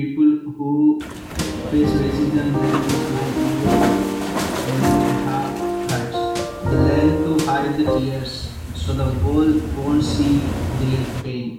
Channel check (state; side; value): identical; both; correlation 1.00